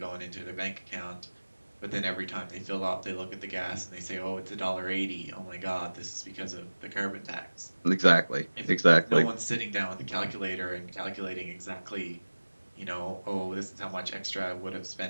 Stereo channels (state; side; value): inverted; both; correlation -1.00